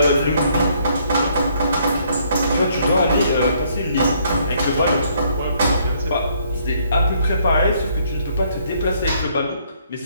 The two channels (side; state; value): both; inverted; correlation -0.67